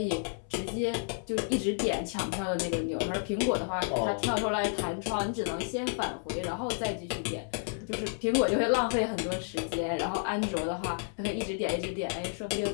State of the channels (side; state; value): right; silent; 57 dB below the other